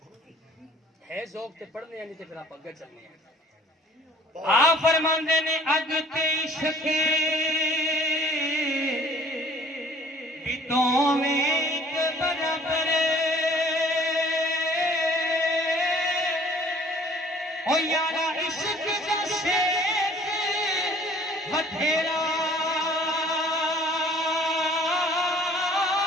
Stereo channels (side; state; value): both; normal; correlation 0.53